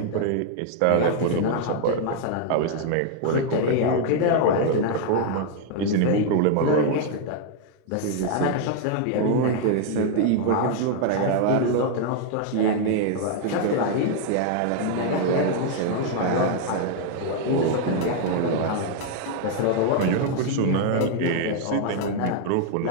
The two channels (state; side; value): different; both; correlation 0.00